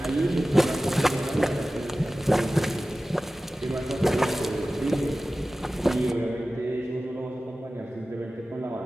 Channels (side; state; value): both; normal; correlation 0.96